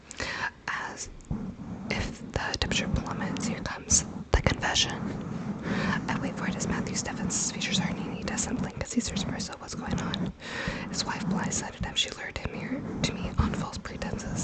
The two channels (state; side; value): identical; both; correlation 1.00